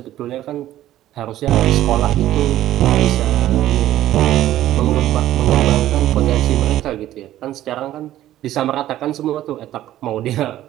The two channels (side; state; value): left; quieter; 13.5 dB